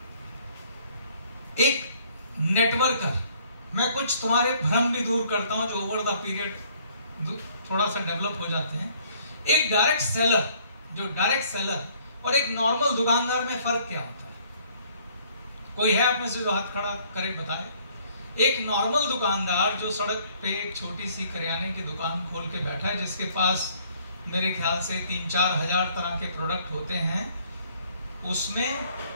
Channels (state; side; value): inverted; both; correlation -0.61